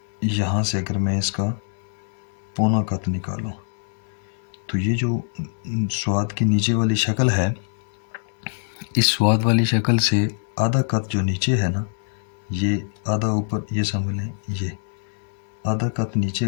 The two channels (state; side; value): silent; right; digital silence